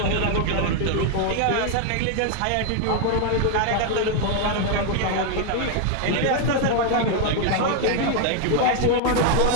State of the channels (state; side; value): different; both; correlation 0.00